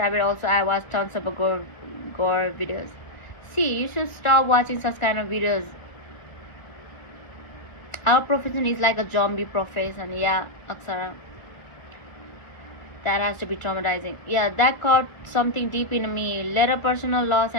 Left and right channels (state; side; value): late; right; 1.5 ms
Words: also I watched tons of gore videos. See, you should stop watching such kind of videos. Our profession is like a zombie profession. Yeah, Aksara. That has to be traumatizing. Yeah, that caught something deep in me. Later personal loss